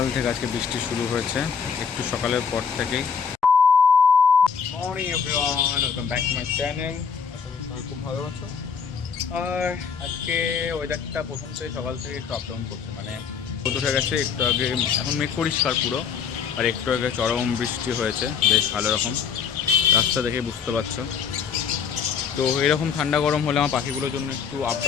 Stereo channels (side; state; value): right; quieter; 6.6 dB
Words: থেকে আজকে বৃষ্টি শুরু হয়েছে, একটু সকালের পর থেকেই। Morning everyone, welcome back to my channel. আশা করি সবাই খুব ভালো আছো। আর আজকে ওয়েদারটা প্রথম থেকে সকাল থেকে একটু আপ ডাউন করছে, মানে রোদ উঠে গেছে একটু আগে, এখন মেঘ পরিষ্কার পুরো, আর একটু আগে চরম বৃষ্টি হয়েছে বেশ ভালো রকম, রাস্তা দেখে বুঝতে পারছো। তো এরকম ঠান্ডা গরম হলে আমার পাখিগুলোর জন্য একটু আপ